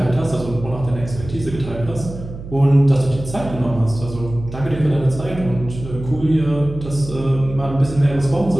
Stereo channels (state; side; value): noise; right; hum, 12 dB below the sound